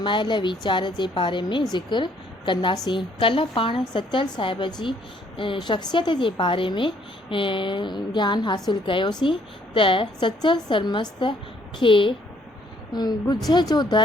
वीचार जे बारे में ज़िक्र कंदासीं। कल्ह पाण सचल साहिब जी शख़्सियत जे बारे में ज्ञान हासिल कयोसीं त सचल सरमस्त खे ॻुझ जो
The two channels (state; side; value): normal; both; correlation 0.65